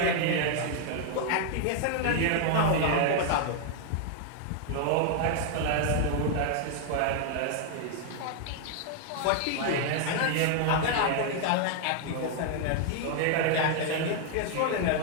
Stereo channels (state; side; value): different; both; correlation 0.00